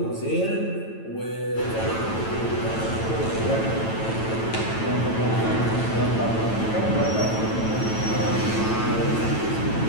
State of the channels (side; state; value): right; late; 9.0 ms